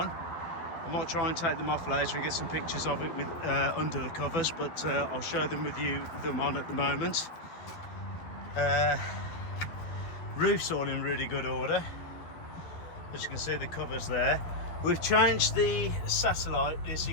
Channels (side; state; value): right; late; 12 ms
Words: I might try and take them off later and get some pictures of it with under the covers, but I'll show them with you them on at the moment. Roof's all in really good order. As you can see, the covers there. We've changed the satellite. So